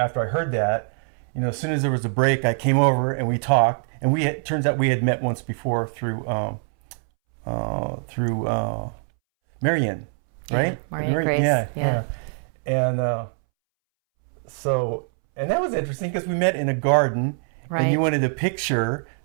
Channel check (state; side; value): silent; left; 63 dB below the other